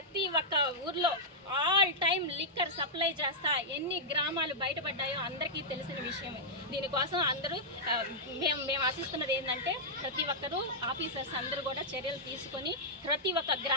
ఒక్క ఊర్లో ఆల్ టైమ్ లిక్కర్ సప్లై చేస్తా. ఎన్ని గ్రామాలు బయటపడ్డాయో అందరికీ తెలిసిన విషయమే. దీనికోసం అందరూ మేము ఆశిస్తున్నది ఏంటంటే ప్రతి ఒక్కరూ ఆఫీసర్స్ అందరూ కూడా చర్యలు తీసుకొని ప్రతి ఒక్క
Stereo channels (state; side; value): normal; both; correlation -0.09